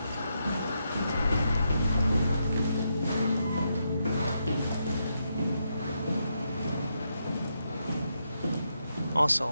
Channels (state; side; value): inverted; both; correlation -0.82